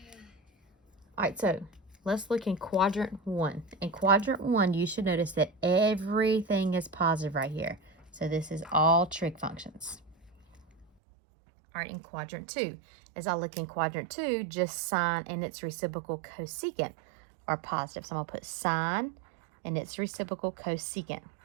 All right, so let's look in quadrant 1. In quadrant 1, you should notice that everything is positive right here. So this is all trig functions. All right, in quadrant 2, as I look in quadrant 2, just sine and its reciprocal cosecant are positive. So I'm going to put sine and its reciprocal cosecant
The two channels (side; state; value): left; drops out; at 10.9 s